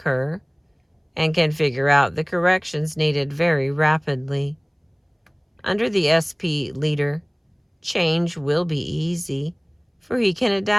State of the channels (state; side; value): identical; both; correlation 1.00